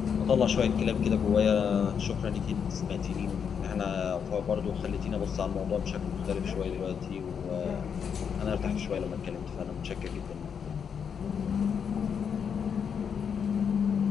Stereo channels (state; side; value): quieter; right; 7.1 dB